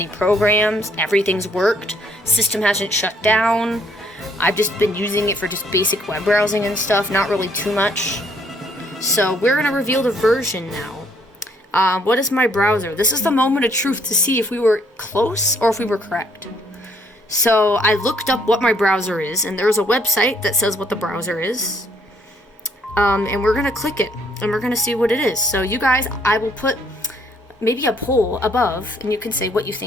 programs. Everything's worked. System hasn't shut down. I've just been using it for just basic web browsing and stuff, not really too much. So we're going to reveal the version now. What is my browser? This is the moment of truth to see if we were close or if we were correct. So I looked up what my browser is, and there's a website that says what the browser is. And we're gonna click it, and we're gonna see what it is. So you guys, I will put maybe a poll above, and you can say what you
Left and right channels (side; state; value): both; normal; correlation 0.67